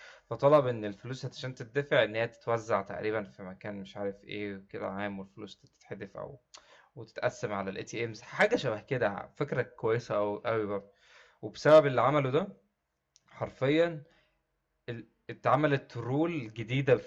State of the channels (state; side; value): identical; both; correlation 1.00